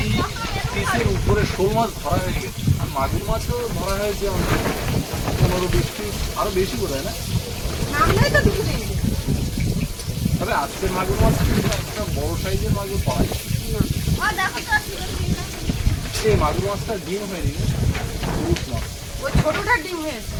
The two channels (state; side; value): identical; both; correlation 1.00